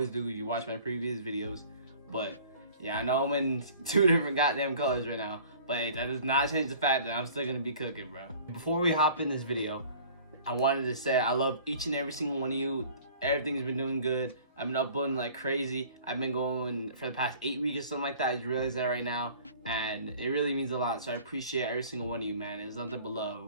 do if you watch my previous videos. But yeah, I know I'm in two different goddamn colors right now, but hey, that does not change the fact that I'm still gonna be cooking, bro. Before we hop in this video, I wanted to say I love each and every single one of you. Everything's been doing good. I've been uploading like crazy. I've been going for the past 8 weeks or something like that. I just realized that right now, and it really means a lot. So I appreciate every single one of you, man. There's nothing but love.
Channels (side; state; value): both; inverted; correlation -0.48